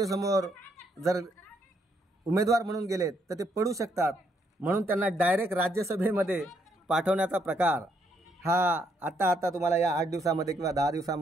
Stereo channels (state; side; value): normal; both; correlation 0.73